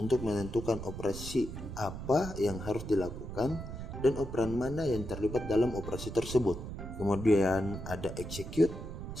menentukan operasi apa yang harus dilakukan dan operan mana yang terlibat dalam operasi tersebut. Kemudian ada execute.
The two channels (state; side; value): noise; right; rumble, 8 dB below the sound